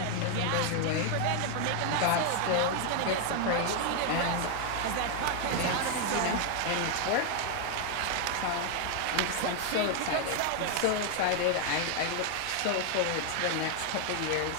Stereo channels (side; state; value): both; different; correlation 0.00